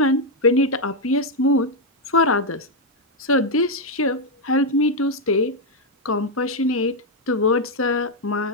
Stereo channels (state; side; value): normal; both; correlation 0.01